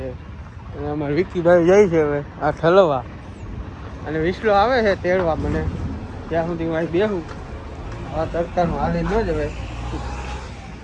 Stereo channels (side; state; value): both; identical; correlation 1.00